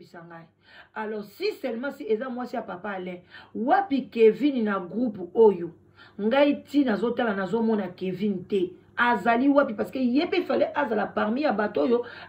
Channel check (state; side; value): identical; both; correlation 1.00